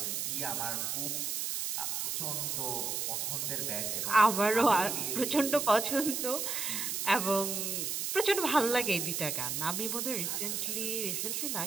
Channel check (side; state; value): right; noise; hiss, 1 dB below the sound